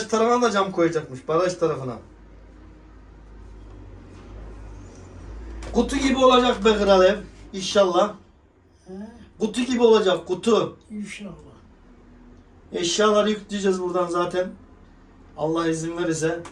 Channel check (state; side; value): identical; both; correlation 1.00